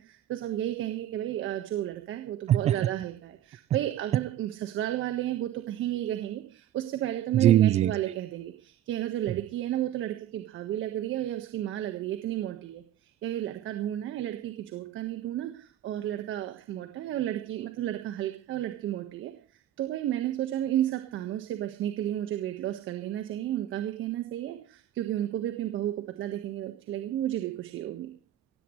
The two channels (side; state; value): left; quieter; 12.1 dB